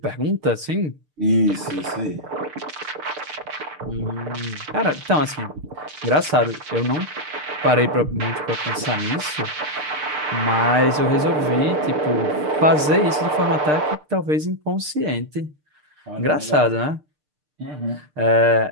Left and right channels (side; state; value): left; late; 6.6 ms